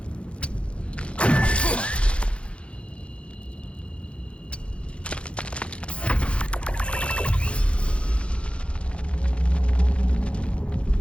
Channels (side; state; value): right; late; 0.060 ms